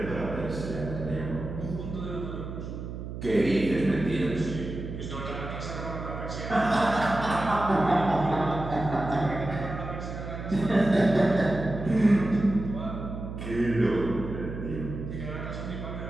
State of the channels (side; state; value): right; noise; hum, 8 dB below the sound